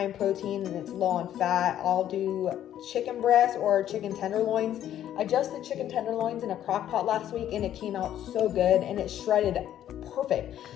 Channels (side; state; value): right; quieter; 11.3 dB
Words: in protein and it's low on fat. I'll do chicken breast or chicken tenderloins. I just did chicken tenderloins in a crock pot last week and it came out so good and it shredded perfect.